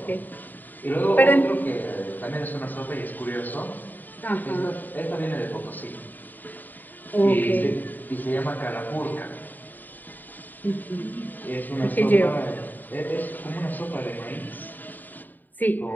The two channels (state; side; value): late; right; 0.088 ms